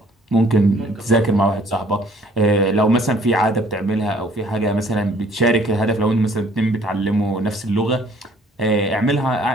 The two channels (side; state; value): both; normal; correlation 0.58